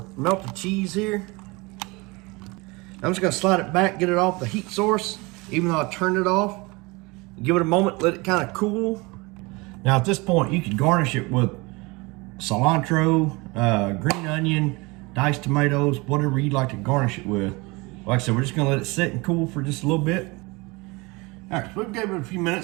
melted cheese here. I'm just gonna slide it back, get it off the heat source, even though I turned it off. Give it a moment, let it kind of cool. Now at this point, you can garnish it with cilantro, green onion, diced tomatoes, whatever you'd like to garnish it with. Like I said, we're just gonna let it sit and cool for just a little bit. All right, so we've given it a few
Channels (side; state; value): left; quieter; 25.3 dB